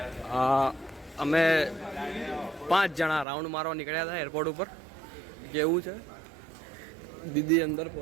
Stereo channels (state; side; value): drops out; left; at 3.2 s